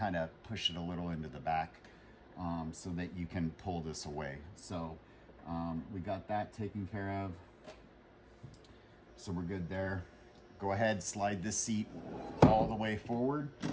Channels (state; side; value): identical; both; correlation 1.00